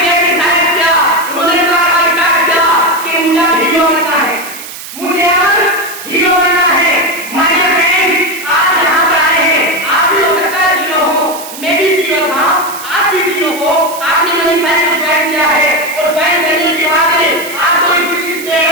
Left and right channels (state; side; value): noise; right; hiss, 12 dB below the sound